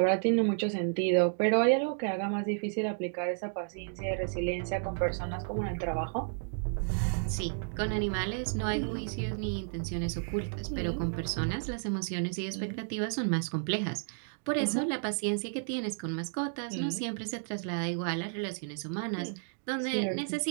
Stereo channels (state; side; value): silent; left; digital silence